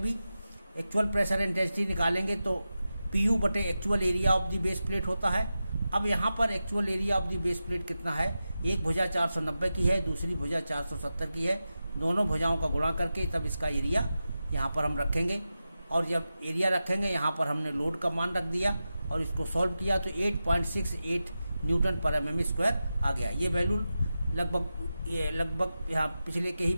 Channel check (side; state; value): both; inverted; correlation -0.92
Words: भी एक्चुअल प्रेशर इंटेंसिटी निकालेंगे तो PU बटे actual area of the base plate होता है। अब यहाँ पर actual area of the base plate कितना है, एक भुजा 490 की है, दूसरी भुजा 470 की है, दोनों भुजाओं का गुणा करके तब इसका एरिया यहाँ पर हम रखेंगे। और जब एरिया रखेंगे यहाँ पर हमने लोड का मान रख दिया और इसको सॉल्व किया तो 8.68 न्यूटन पर mm स्क्वायर आ गया। ये वैल्यू लगभग यहाँ पिछले के ही